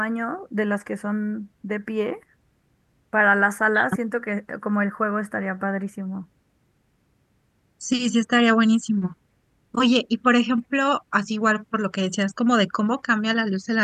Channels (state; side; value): identical; both; correlation 1.00